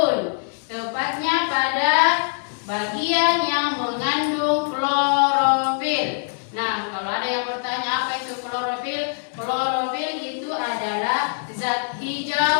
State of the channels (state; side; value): silent; right; digital silence